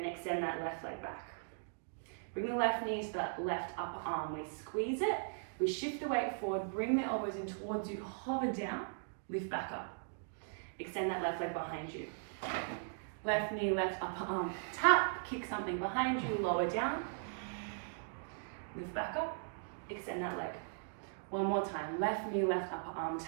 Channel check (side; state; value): left; silent; digital silence